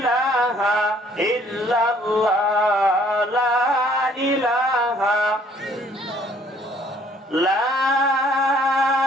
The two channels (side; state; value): both; normal; correlation 0.61